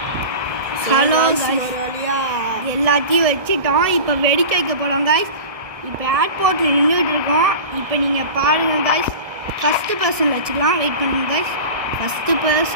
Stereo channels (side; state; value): left; late; 1.7 ms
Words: ஹலோ காய்ஸ் எல்லாத்தையும் வச்சுட்டோம். இப்போ வெடிக்க வைக்க போகிறோம் காய்ஸ். இப்போ ஏர்போர்ட்டில் நின்றுட்டு இருக்கோம். இப்போ நீங்கள் பாருங்கள் காய்ஸ். ஃபஸ்ட்டு பர்சனில் வச்சுக்கலாம். வெயிட் பண்ணுங்க காய்ஸ். ஃபஸ்ட்டு